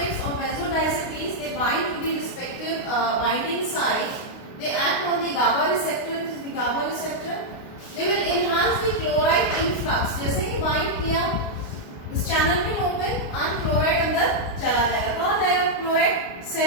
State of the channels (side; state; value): right; late; 29 ms